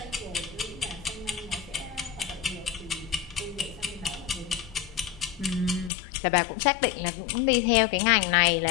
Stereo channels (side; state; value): right; drops out; at 5.9 s